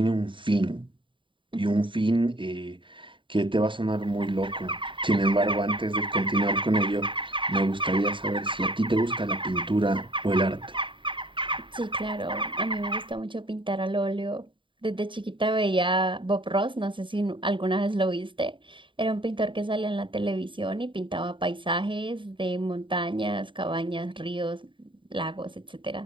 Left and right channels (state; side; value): late; left; 0.24 ms